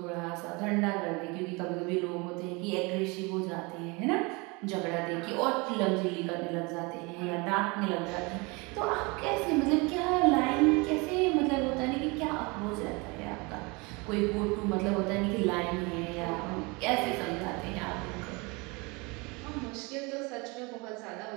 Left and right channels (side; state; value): left; quieter; 27.3 dB